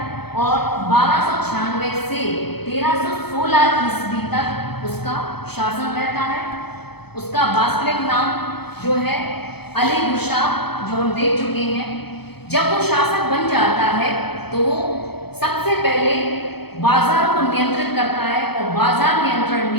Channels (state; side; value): late; right; 0.97 ms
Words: और 1296 से 1316 ईस्वी तक उसका शासन रहता है। उसका वास्तविक नाम जो है अली गुरशाह, जो हम देख चुके हैं। जब वो शासक बन जाता है तो वो सबसे पहले बाजार को नियंत्रित करता है और बाजार नियंत्रण